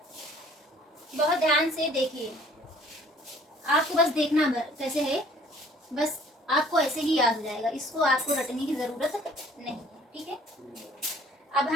बहुत ध्यान से देखिए, आपको बस देखना कैसे है, बस आपको ऐसे ही याद हो जाएगा, इसको आपको रटने की जरूरत नहीं है। ठीक है, अब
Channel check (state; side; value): normal; both; correlation 0.55